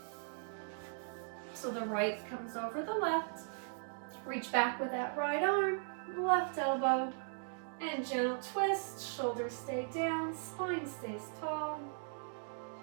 So the right comes over the left. Reach back with that right arm, left elbow, and gentle twist. Shoulders stay down, spine stays tall.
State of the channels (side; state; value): left; silent; digital silence